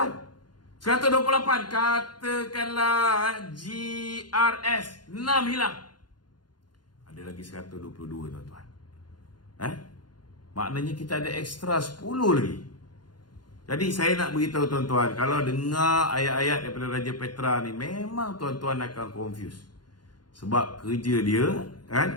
128 katakanlah GRS 6 hilang. Ada lagi 122 tuan-tuan. Maknanya kita ada ekstra 10 lagi. Jadi saya nak beritahu tuan-tuan, kalau dengar ayat-ayat daripada Raja Petra ni, memang tuan-tuan akan confuse. Sebab kerja dia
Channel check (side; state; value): right; late; 0.71 ms